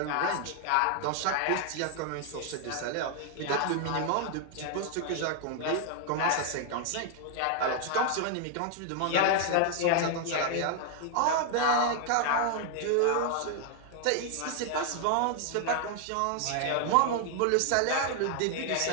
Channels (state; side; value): different; both; correlation 0.00